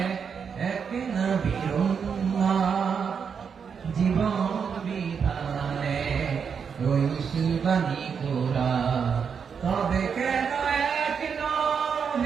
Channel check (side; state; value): left; quieter; 6.6 dB